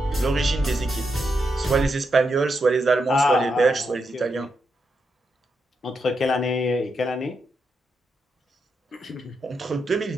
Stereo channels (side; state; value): both; normal; correlation 0.84